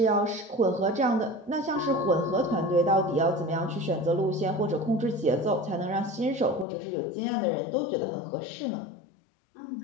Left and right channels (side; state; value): right; drops out; at 6.7 s